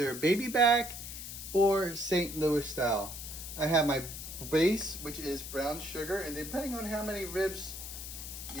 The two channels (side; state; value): left; noise; hiss, 9 dB below the sound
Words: baby back or St. Louis style. I have my base, which is brown sugar, and depending on how many ribs